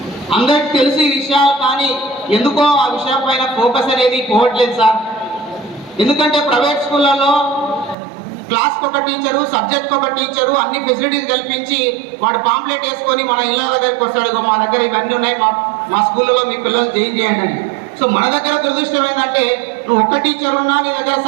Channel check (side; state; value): left; drops out; at 8.0 s